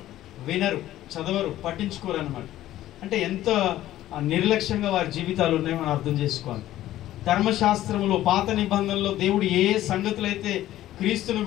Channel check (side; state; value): right; quieter; 13.9 dB